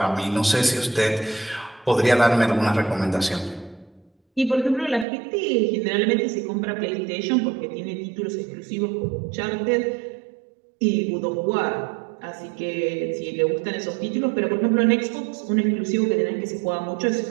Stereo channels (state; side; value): drops out; left; at 5.1 s